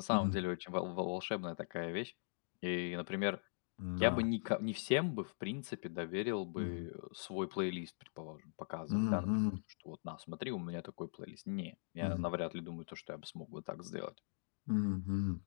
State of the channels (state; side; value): silent; right; digital silence